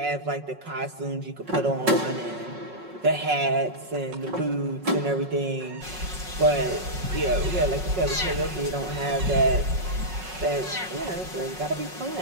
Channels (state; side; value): late; left; 5.4 ms